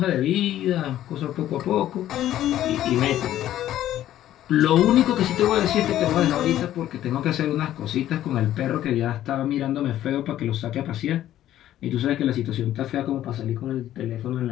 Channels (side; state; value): right; quieter; 12.7 dB